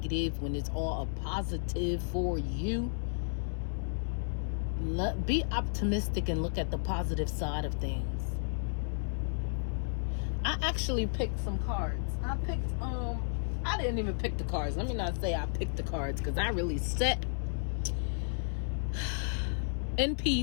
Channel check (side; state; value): right; silent; 56 dB below the other